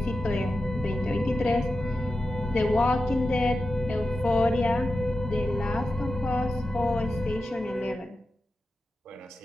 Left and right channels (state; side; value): normal; both; correlation 0.92